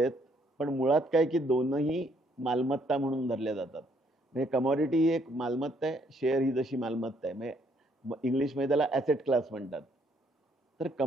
आहेत. पण मुळात काय की दोनही मालमत्ता म्हणून धरल्या जातात. म्हणजे कमॉडिटी ही एक मालमत्ता आहे, शेअर ही जशी मालमत्ता आहे. म्हणजे इंग्लिशमध्ये त्याला ॲसेट क्लास म्हणतात. तर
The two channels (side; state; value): both; normal; correlation 0.69